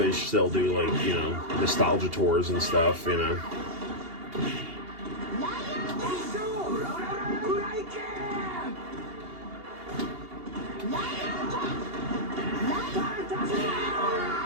still do, like, you know, nostalgia tours and stuff, you know.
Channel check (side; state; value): left; late; 2.8 ms